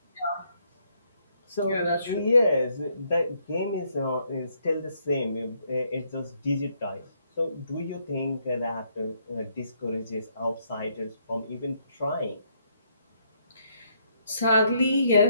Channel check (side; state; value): both; inverted; correlation -0.72